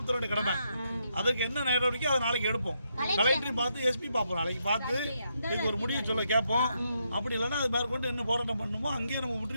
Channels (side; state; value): both; inverted; correlation -0.79